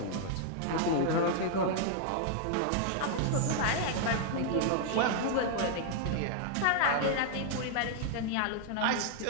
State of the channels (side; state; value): both; different; correlation 0.00